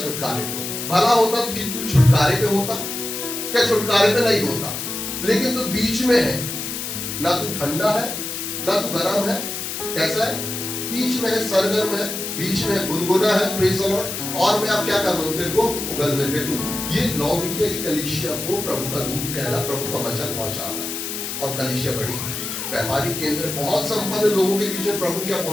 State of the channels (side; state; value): left; noise; hiss, 5 dB below the sound